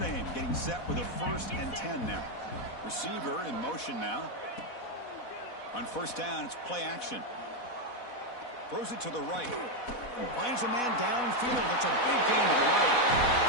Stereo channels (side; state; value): right; late; 4.1 ms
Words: getting set with a 1st and 10 now. Receiver in motion now. On 1st down, it's play action. Throws it to the right. Finds a man downfield. It's a big gain to the right.